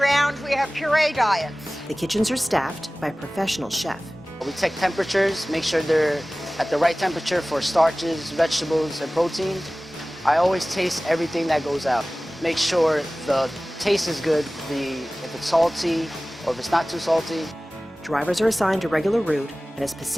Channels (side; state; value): both; normal; correlation 0.98